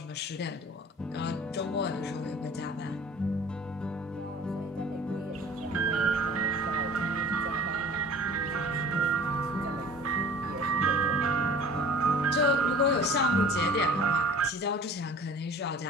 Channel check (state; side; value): normal; both; correlation 0.44